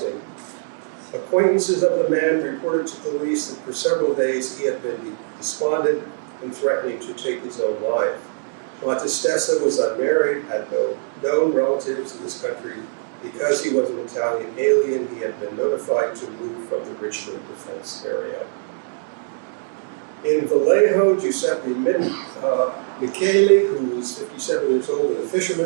Acquaintances of the man reported to police that for several days he had been despondent and threatening to take his own life. Battistessa was unmarried, had no known relatives in this country. Because he was an Italian alien, he had been notified to move from the Richmond defense area. In Vallejo, Giuseppe Michele, who was 57 years old and a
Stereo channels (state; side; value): silent; left; digital silence